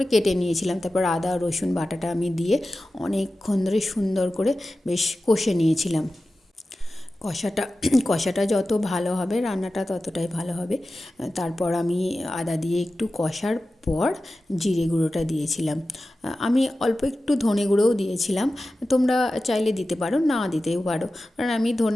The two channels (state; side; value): normal; both; correlation 0.94